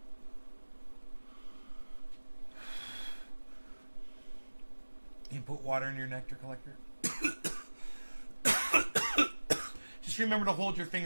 You put water in your nectar collector? Just remember to hold your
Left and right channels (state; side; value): inverted; both; correlation -1.00